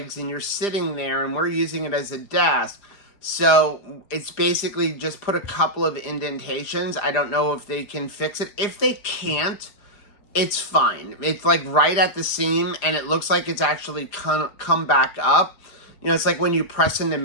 and you're sitting there, and we're using it as a desk. So it's basically just put a couple of indentations. I don't know if they can fix it. If they can't, it's fine. It's like right at the seam, and it looks like it's actually come back up. You know, it's like when you press into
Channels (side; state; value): right; late; 4.9 ms